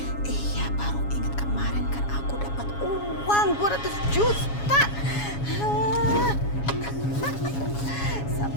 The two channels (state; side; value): late; right; 7.2 ms